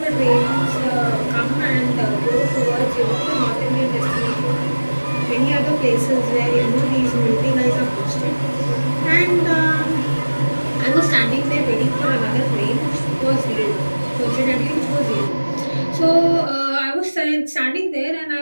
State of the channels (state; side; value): inverted; both; correlation -1.00